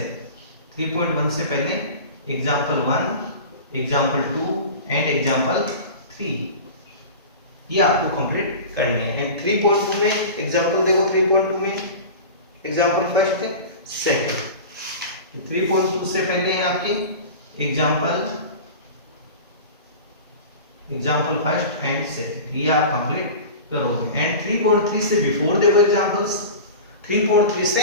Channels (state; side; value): inverted; both; correlation -0.33